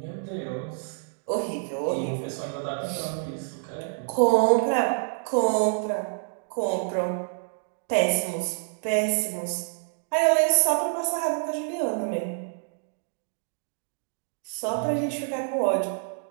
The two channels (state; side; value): silent; left; digital silence